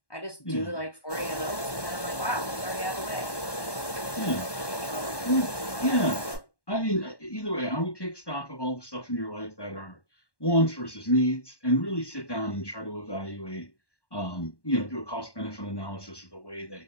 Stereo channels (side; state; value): right; late; 1.1 ms